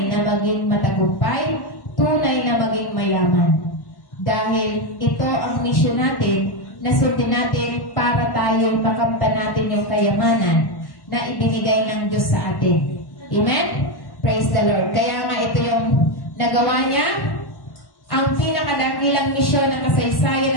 na maging matagumpay, tunay na maging mayaman. Dahil ito ang misyon natin na sundin natin para tayo makamtan natin yung kayamanan na ibinigay ng Diyos sa atin. Amen? Praise the Lord. Kaya nga ito yung nagawa niya, ang pinakadakilang misyon ng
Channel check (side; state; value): right; late; 1.1 ms